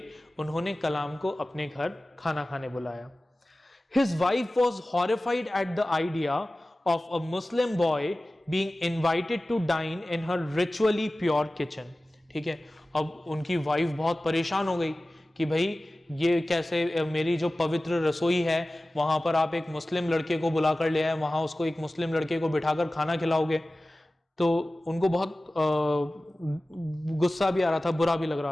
उन्होंने कलाम को अपने घर खाना खाने बुलाया। His wife was horrified at the idea of a Muslim boy being invited to dine in her ritually pure kitchen. ठीक है, अब उनकी वाइफ बहुत परेशान हो गई कि भाई ये कैसे, मेरी जो पवित्र रसोई है वहां पर आप एक मुस्लिम लड़के को बुला कर ले आए, वहां उसको एक मुस्लिम लड़के को बिठाकर खाना खिलाओगे। तो उनको बहुत गुस्सा भी आ रहा था, बुरा भी लग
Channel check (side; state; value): both; normal; correlation 0.97